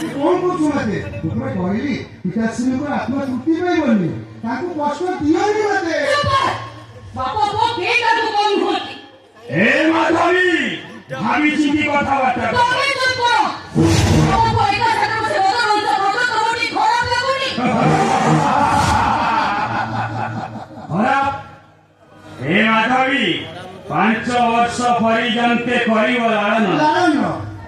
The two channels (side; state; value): both; identical; correlation 1.00